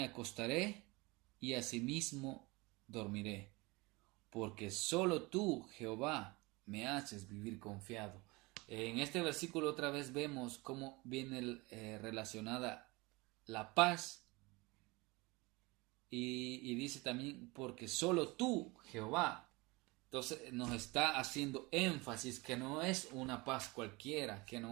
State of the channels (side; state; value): left; quieter; 24.5 dB